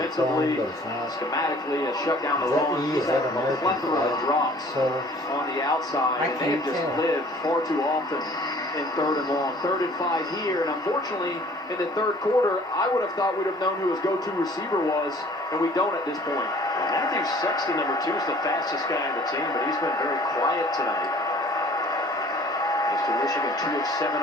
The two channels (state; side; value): normal; both; correlation 0.52